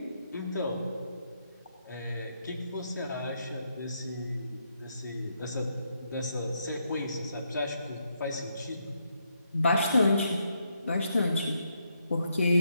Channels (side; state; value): both; inverted; correlation -0.78